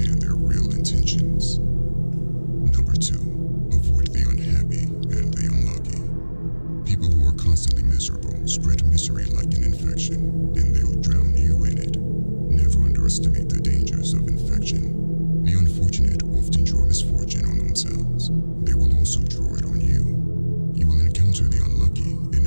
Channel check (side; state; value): both; inverted; correlation -1.00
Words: their real intentions. Number 2, avoid the unhappy and the unlucky. People who are constantly miserable spread misery like an infection, and they'll drown you in it. Never underestimate the dangers of infection. The unfortunate often draw misfortune on themselves. They will also draw it on you. You will encounter the unlucky in